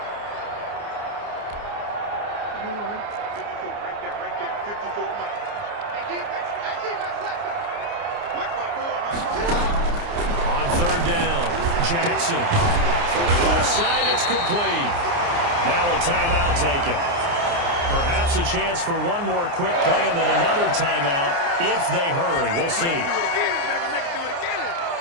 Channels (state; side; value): late; left; 29 ms